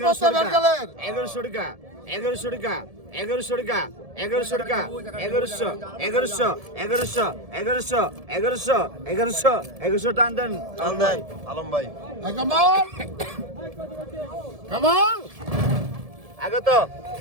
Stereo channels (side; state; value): left; late; 1.7 ms